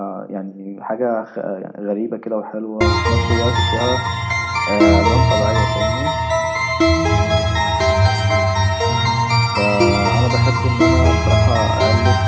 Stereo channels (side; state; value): both; identical; correlation 1.00